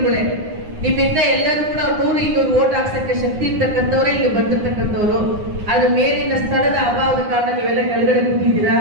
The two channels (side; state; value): left; late; 9.6 ms